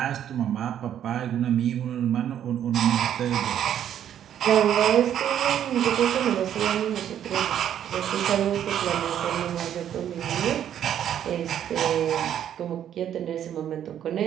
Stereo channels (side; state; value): left; quieter; 10.1 dB